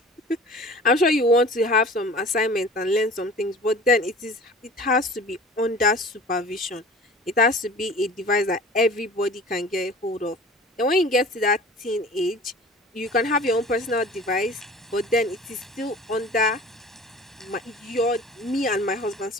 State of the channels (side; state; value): both; normal; correlation 0.42